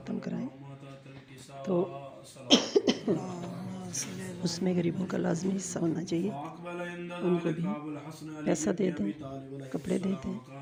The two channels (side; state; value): both; identical; correlation 1.00